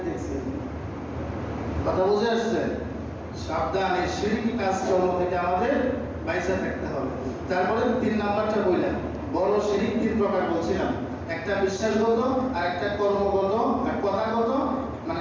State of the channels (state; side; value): identical; both; correlation 1.00